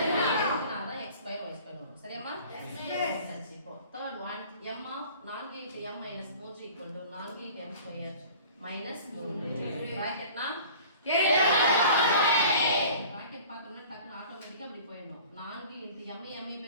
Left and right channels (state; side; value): inverted; both; correlation -0.45